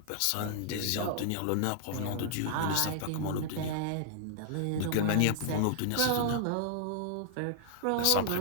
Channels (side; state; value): both; different; correlation -0.01